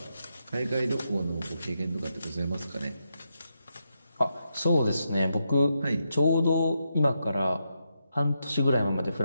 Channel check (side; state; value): both; inverted; correlation -0.84